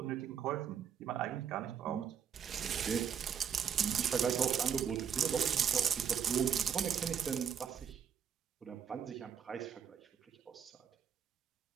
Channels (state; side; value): quieter; left; 7.8 dB